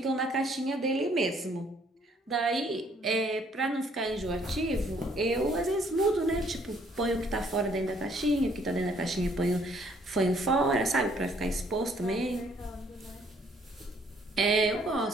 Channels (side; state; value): both; normal; correlation 0.64